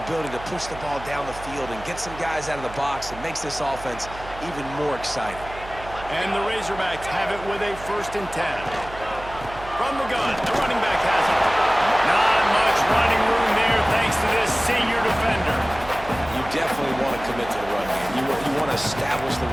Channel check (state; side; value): noise; right; hum, 15 dB below the sound